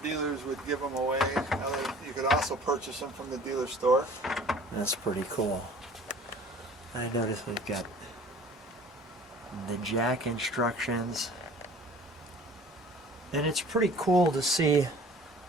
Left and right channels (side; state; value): both; normal; correlation 0.47